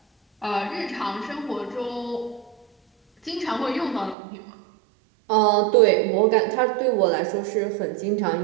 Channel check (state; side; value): drops out; left; at 4.2 s